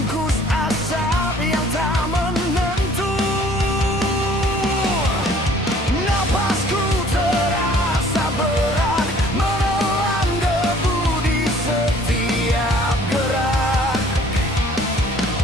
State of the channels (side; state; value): both; normal; correlation 0.55